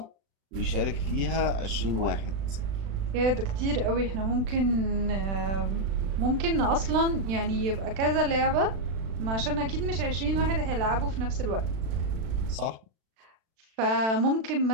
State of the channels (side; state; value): left; late; 36 ms